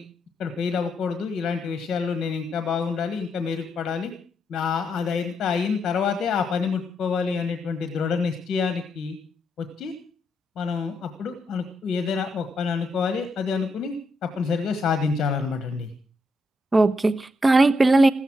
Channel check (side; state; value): both; normal; correlation 0.80